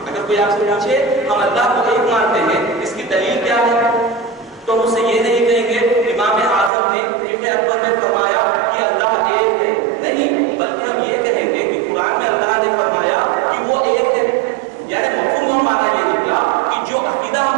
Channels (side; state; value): left; drops out; at 6.7 s